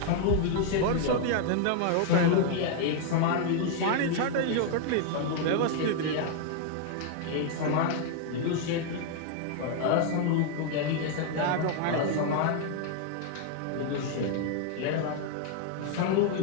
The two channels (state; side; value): different; both; correlation 0.00